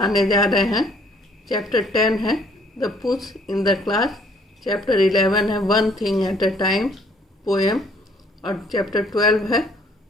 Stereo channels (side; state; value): both; normal; correlation 0.62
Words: जा रहे हैं। चैप्टर 10 है the push in the class, chapter 11 है one thing at a time poem, और चैप्टर 12 है